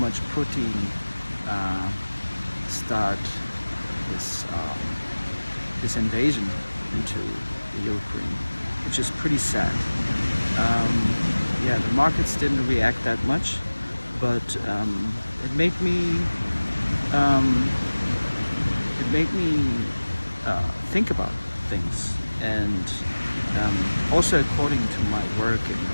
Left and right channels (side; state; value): both; inverted; correlation -1.00